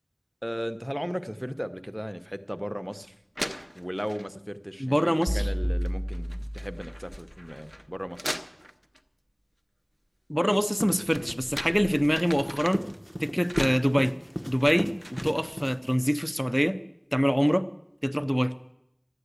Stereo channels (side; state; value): both; identical; correlation 1.00